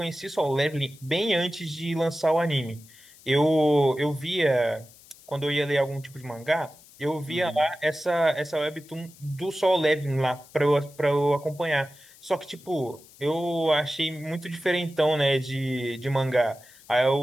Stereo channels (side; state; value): left; noise; hiss, 24 dB below the sound